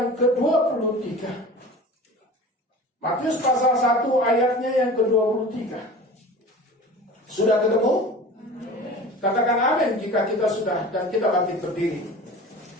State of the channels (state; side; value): normal; both; correlation 0.38